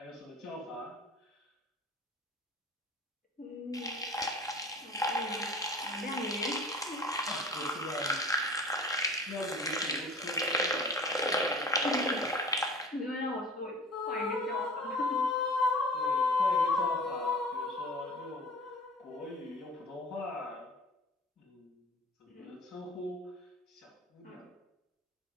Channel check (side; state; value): both; normal; correlation 0.42